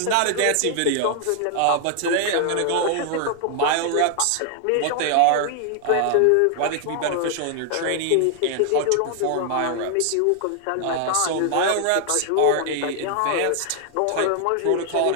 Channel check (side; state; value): both; different; correlation 0.00